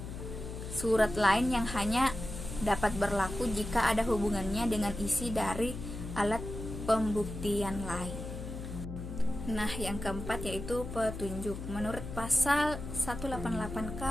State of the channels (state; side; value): noise; left; hum, 8 dB below the sound